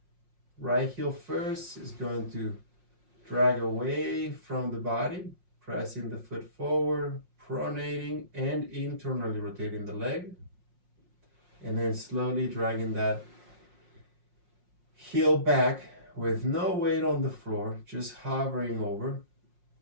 Right heel first is going to drag away from the body, pressing the foot forward, pronating and internally rotating the leg. And then slowly dragging that heel back with no weight on the floor, just hovering over,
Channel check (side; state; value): left; late; 5.6 ms